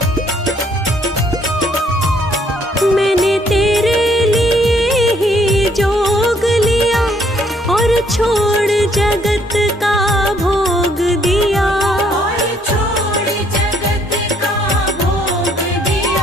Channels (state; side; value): normal; both; correlation 0.66